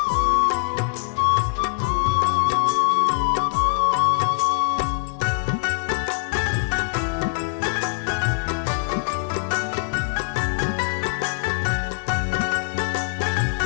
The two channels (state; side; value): silent; right; 64 dB below the other